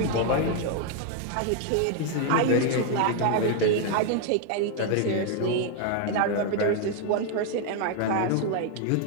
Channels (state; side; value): different; both; correlation 0.00